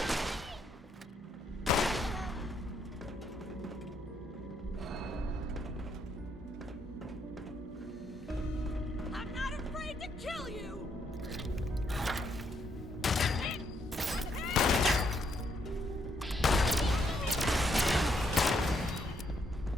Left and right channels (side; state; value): both; normal; correlation 0.74